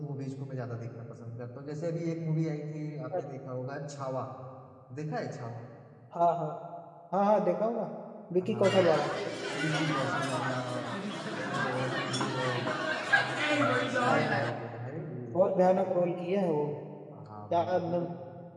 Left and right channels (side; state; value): both; identical; correlation 1.00